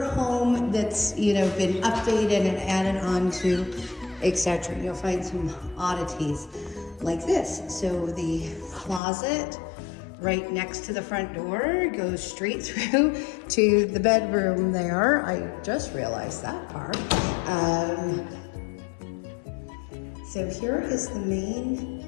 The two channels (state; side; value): drops out; right; at 9.0 s